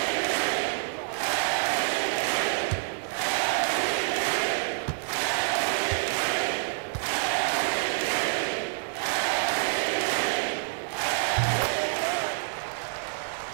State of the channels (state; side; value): silent; left; digital silence